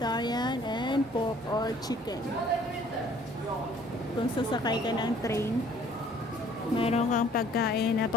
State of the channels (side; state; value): both; normal; correlation 0.57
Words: and pork or chicken. Kung sasakay ka ng train, meron kang pagkain na